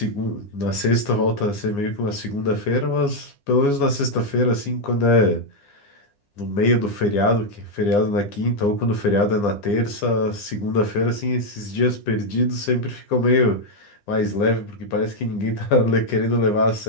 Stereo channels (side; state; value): right; late; 9.9 ms